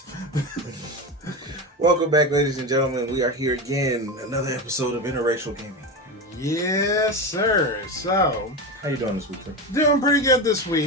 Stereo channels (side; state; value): both; normal; correlation 0.20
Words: Welcome back, ladies and gentlemen. We are here again. Another episode of Interracial Gaming. Yes, sir. So, How you doing this week, sir? doing pretty good this